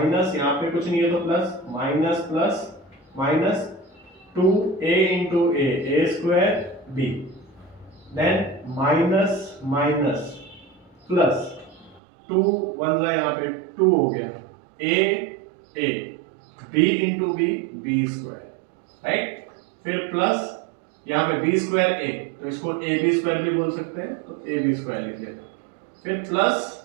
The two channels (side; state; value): left; drops out; at 12.0 s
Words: यहाँ पे कुछ नहीं है तो plus, minus plus minus 2a into a square b, then minus minus plus 2 1 यहाँ पे 2 हो गया, a b into b square, right. फिर प्लस यहाँ पे बी स्क्वायर ए, तो इसको ए बी स्क्वायर भी बोल सकते हैं, तो ए बी स्क्वायर लिख दिया, फिर